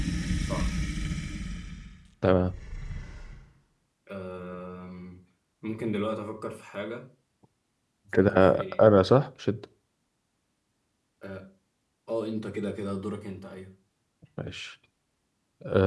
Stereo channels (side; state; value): both; identical; correlation 1.00